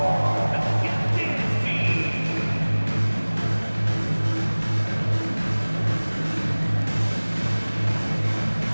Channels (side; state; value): both; inverted; correlation -1.00